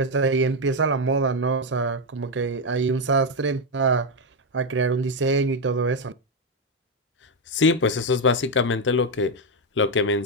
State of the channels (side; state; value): both; normal; correlation 0.05